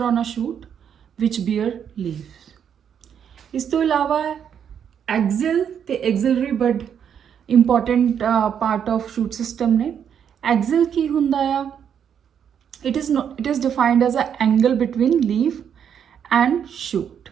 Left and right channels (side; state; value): left; quieter; 8.3 dB